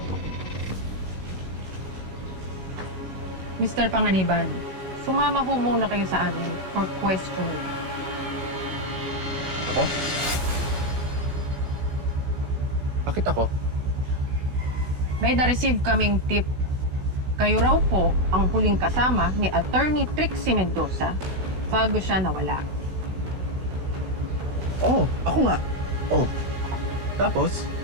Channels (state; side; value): late; left; 16 ms